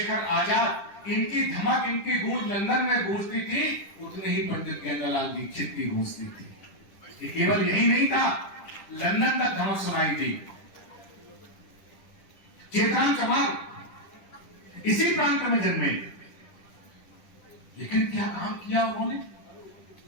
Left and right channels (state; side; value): late; right; 10 ms